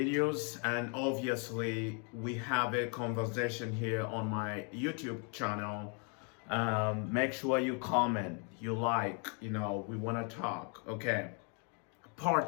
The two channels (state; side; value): quieter; right; 38.2 dB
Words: And obviously, we have a conversation here on my YouTube channel. Make sure you comment, you like, we want to talk. Okay.